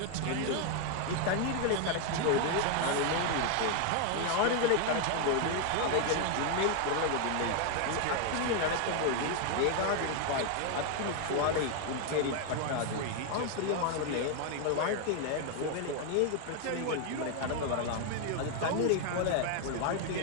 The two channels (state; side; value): different; both; correlation 0.00